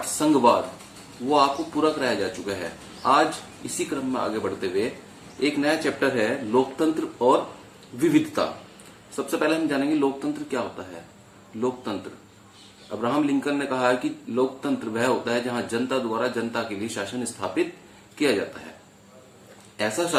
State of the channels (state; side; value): identical; both; correlation 1.00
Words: संघवाद वो आपको पूरा कराया जा चुका है। आज इसी क्रम में आगे बढ़ते हुए एक नया चैप्टर है लोकतंत्र और विविधता। सबसे पहले हम जानेंगे लोकतंत्र क्या होता है। लोकतंत्र, अब्राहम लिंकन ने कहा है कि लोकतंत्र वह होता है जहां जनता द्वारा जनता के लिए शासन स्थापित किया जाता है। ऐसा